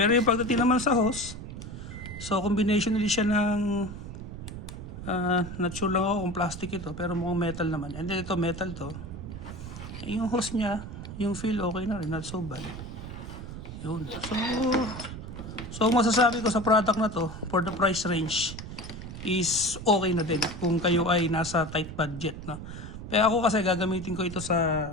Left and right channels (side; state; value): right; noise; rumble, 10 dB below the sound